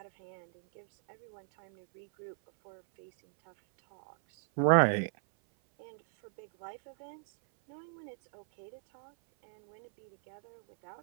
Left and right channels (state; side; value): silent; left; 54 dB below the other